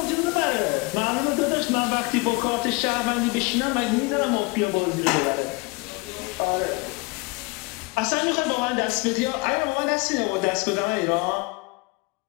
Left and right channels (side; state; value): right; quieter; 26.4 dB